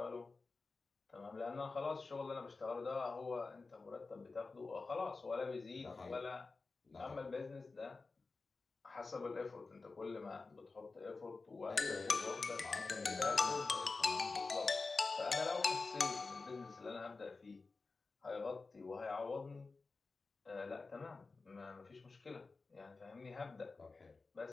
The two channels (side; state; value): right; quieter; 3.9 dB